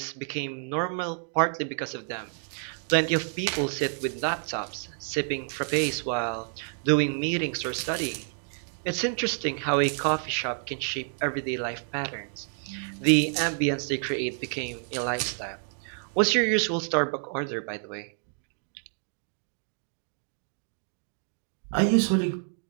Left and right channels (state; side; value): silent; left; 57 dB below the other